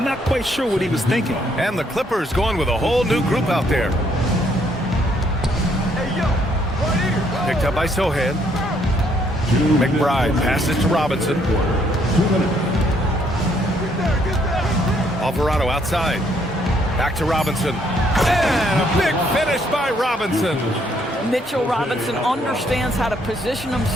not quite sure what he was thinking. And the Clippers going with a whole new group out there. Picked up by Sohan. McBride passes to Robinson. Alvarado outside. Back to Robinson. And a big finish by Robinson. Mitchell Robinson understands how to position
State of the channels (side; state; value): both; normal; correlation 0.69